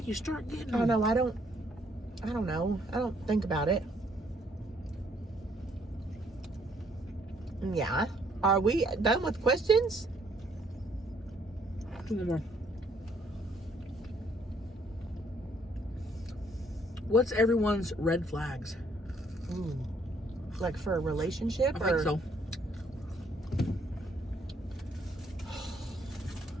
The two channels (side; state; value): both; normal; correlation 0.67